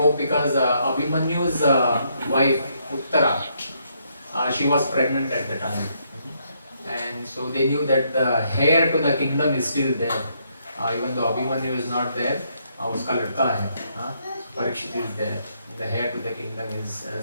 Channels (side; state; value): both; inverted; correlation -0.74